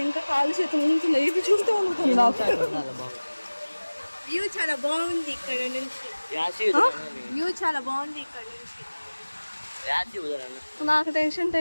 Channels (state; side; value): inverted; both; correlation -1.00